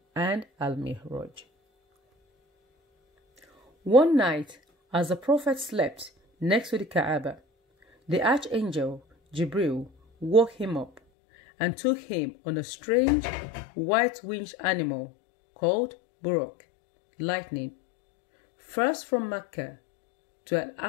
and Al-Mi'raj. One night, as the Prophet slept next to the Kaaba, the Archangel Jibril woke him up and took him on a strange white-winged animal called Buraq, lightning, first from Mecca to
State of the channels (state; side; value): drops out; right; at 11.0 s